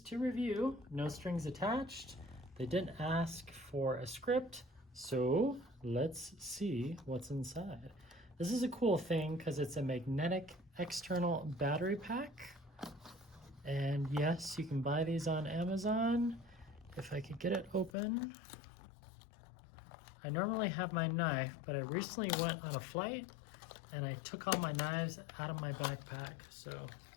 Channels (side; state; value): right; drops out; at 17.9 s